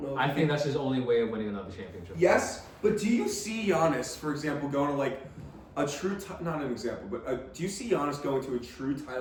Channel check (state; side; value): identical; both; correlation 1.00